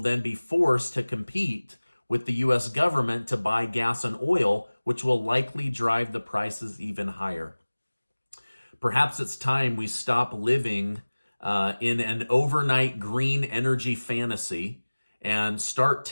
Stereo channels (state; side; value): inverted; both; correlation -1.00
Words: be forced to compete with the U.S. government to buy gas and oil, which will likely drive the prices even higher. Perhaps it's time we stop living in an overnight green energy fantasy and start